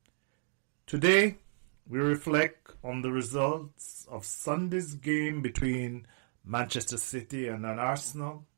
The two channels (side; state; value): left; silent; digital silence